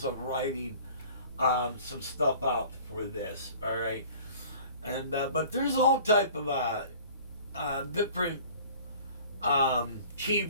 of writing some stuff out for this, all right? And but there's all type of different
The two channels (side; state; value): both; inverted; correlation -0.48